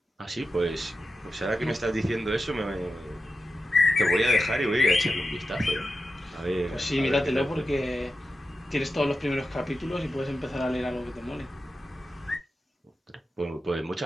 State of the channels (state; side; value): normal; both; correlation 0.91